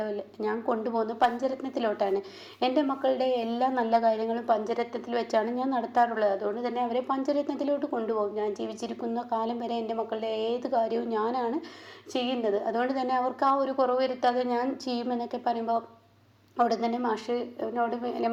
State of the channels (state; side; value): identical; both; correlation 1.00